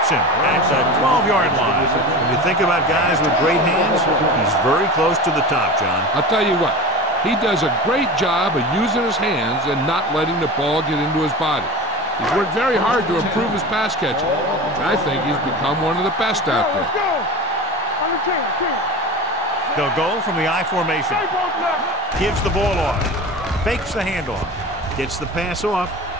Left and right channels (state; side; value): normal; both; correlation 0.31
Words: him at the 12-yard line. When you think about guys with great hands, he's very close to the top, John. I'll tell you what, he does a great job of using his hands and not letting the ball get into his body. He's worked very hard to improve his pass catching, and I think he's become one of the best out there. They'll go from the I formation. Gives the ball off. Fakes the handoff. Gets the pass off.